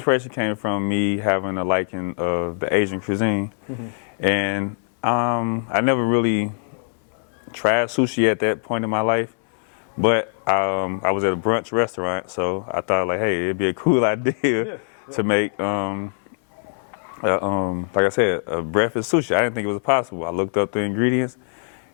came from me having a liking of the Asian cuisine, and I never really tried sushi at that point in my life, but I was at a brunch restaurant, so I thought, like, hey, it'd be a cool idea to make, like I said, a breakfast sushi. I didn't think it was possible. I looked up the ingredients,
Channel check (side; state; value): right; silent; 64 dB below the other